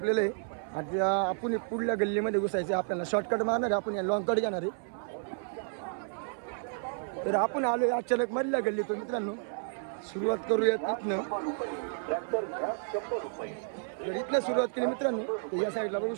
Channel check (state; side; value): silent; left; 56 dB below the other